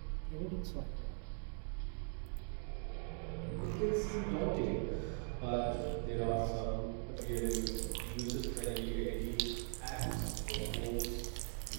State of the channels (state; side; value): silent; left; 50 dB below the other